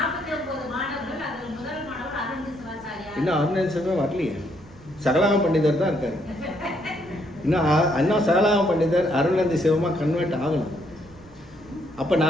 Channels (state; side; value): noise; right; rumble, 24 dB below the sound